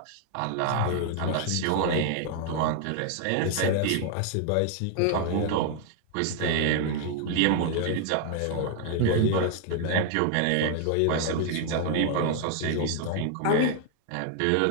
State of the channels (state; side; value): different; both; correlation 0.00